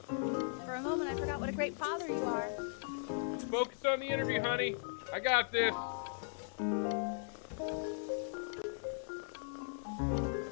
For a moment, I forgot what a great father you are. Focus on the interview, honey. I got this.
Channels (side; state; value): right; silent; 52 dB below the other